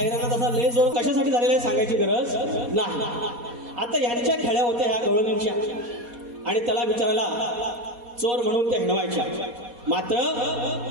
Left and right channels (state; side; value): late; left; 4.2 ms